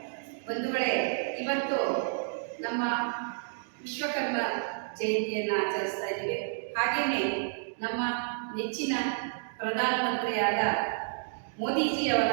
ಬಂಧುಗಳೇ, ಇವತ್ತು ನಮ್ಮ ವಿಶ್ವಕರ್ಮ ಜಯಂತಿಯನ್ನು ಆಚರಿಸ್ತಾ ಇದ್ದೀವಿ. ಹಾಗೆಯೇ ನಮ್ಮ ನೆಚ್ಚಿನ ಪ್ರಧಾನಮಂತ್ರಿಯಾದ ಮೋದಿಜಿಯವರ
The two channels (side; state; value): left; silent; digital silence